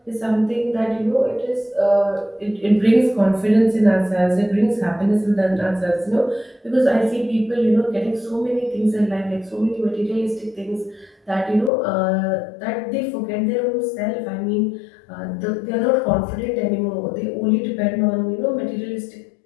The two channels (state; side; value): drops out; right; at 11.7 s